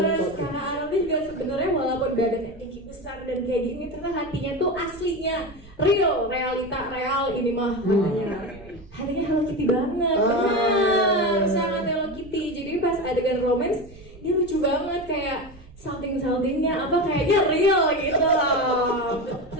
kakak Arnold ini juga sebenarnya walaupun badannya tinggi besar dan kayak gini, ternyata hatinya tuh aslinya real, real ini mah hatinya Hello Kitty banget, benar, sangat Hello Kitty. Jadi pas adegan romance dia lucu banget kayak salting-saltingnya apa kayaknya real gitu loh.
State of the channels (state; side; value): noise; right; rumble, 20 dB below the sound